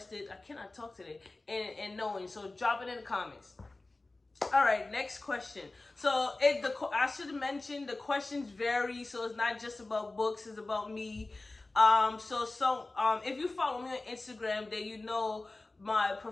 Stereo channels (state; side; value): quieter; right; 3.1 dB